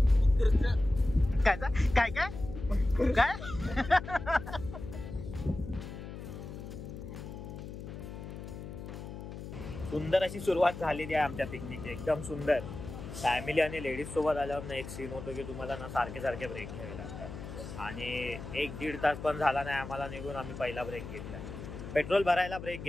काय सुंदर अशी सुरुवात झालेली आहे आमच्या पिकनिकची. एकदम सुंदर. फॅमिली आणि लेडीज सोबत आल्यावर ना एक सीन होतो की तुम्हाला ना सारखे ब्रेक घ्यावे लागतात आणि 1-1.5 तास पण झाला नाही आम्हाला निघून. आम्ही पहिला ब्रेक घेतलाय. पेट्रोल भरायला ब्रेक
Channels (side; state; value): left; noise; hum, 10 dB below the sound